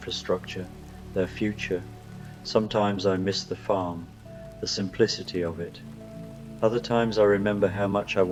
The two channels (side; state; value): both; identical; correlation 1.00